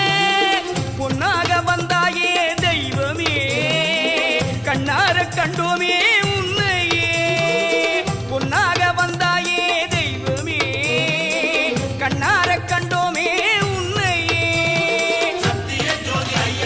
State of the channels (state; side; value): noise; right; rumble, 25 dB below the sound